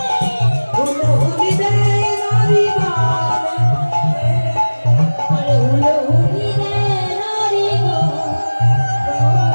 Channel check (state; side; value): inverted; both; correlation -1.00